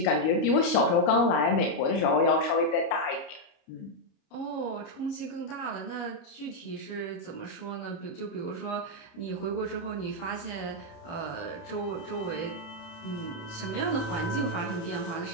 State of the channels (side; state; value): right; late; 29 ms